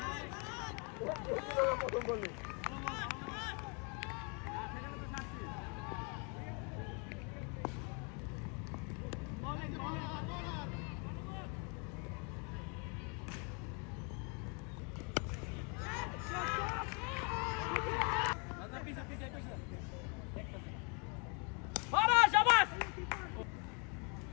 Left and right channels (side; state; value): right; quieter; 35.5 dB